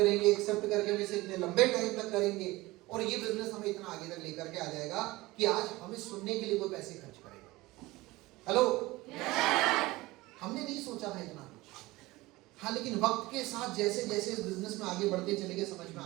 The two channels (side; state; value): left; quieter; 20.1 dB